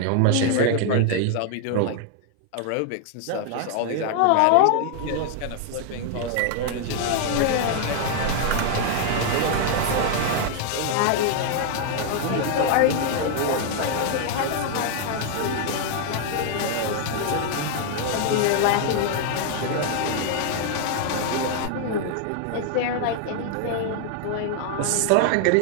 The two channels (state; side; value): different; both; correlation 0.00